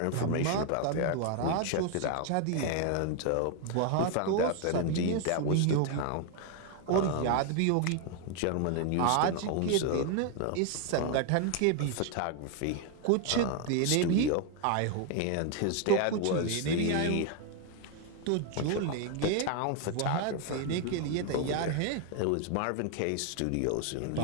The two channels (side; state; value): both; different; correlation 0.01